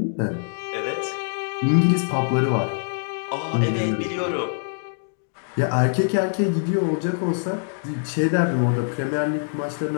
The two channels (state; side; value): silent; right; digital silence